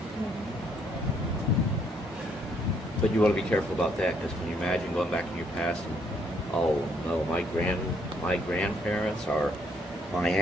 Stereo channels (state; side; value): normal; both; correlation 0.70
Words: But you want to be careful about that, because when you imagine going back in your past and, oh no, my grandparents or my